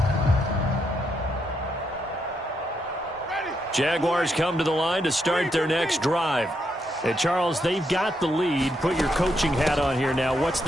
Jaguars come to the line to start their next drive. And Charles, they've got the lead. Put your coaching hat on here now. What's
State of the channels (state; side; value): normal; both; correlation 0.79